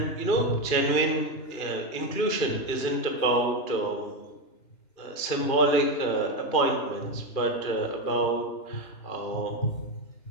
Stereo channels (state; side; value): late; right; 2.5 ms